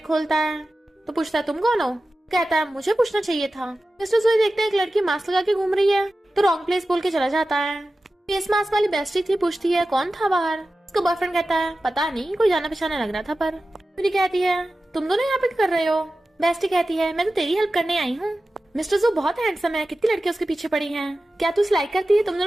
खोलता है। तो पूछता है तुम कौन हो? कहता है मुझे पूछना चाहिए था। मिस्टर जुए देखते हैं एक लड़की मास्क लगा के घूम रही है, तो रॉन्ग प्लेस बोल के चला जाता है। फेस मास्क वाली बेस्टी थी, पूछती है कौन था बाहर? उसका बॉयफ्रेंड कहता है पता नहीं, कोई जाना पहचाना लग रहा था। पर यूरी कहती है तुम दोनों यहाँ पे क्या कर रहे हो? बेस्टी कहती है मैं तो तेरी हेल्प करने आई हूँ। मिस्टर जू बहुत हैंडसम है, कितनी लड़कियां उसके पीछे पड़ी हैं, क्या तू उसे लाइक करती है? तुम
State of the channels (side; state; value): both; normal; correlation 0.94